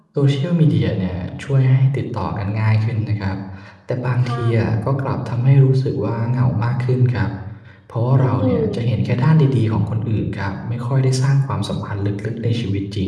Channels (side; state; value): both; identical; correlation 1.00